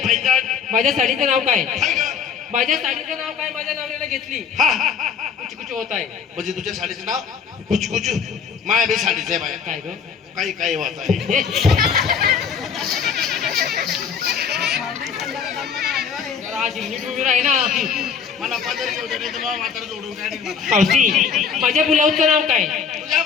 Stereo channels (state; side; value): quieter; right; 6.7 dB